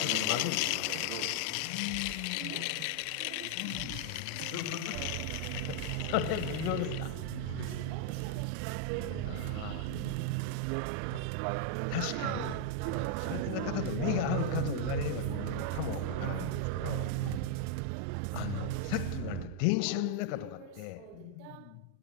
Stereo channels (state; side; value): different; both; correlation 0.00